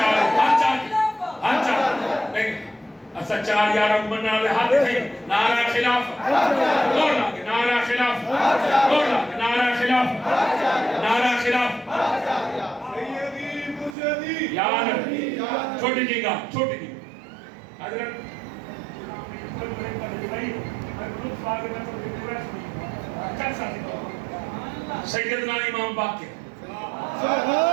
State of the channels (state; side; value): drops out; left; at 14.0 s